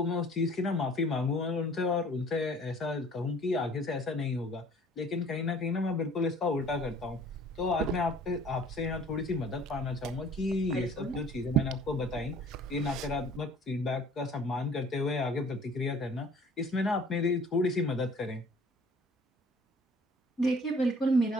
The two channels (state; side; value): normal; both; correlation 0.52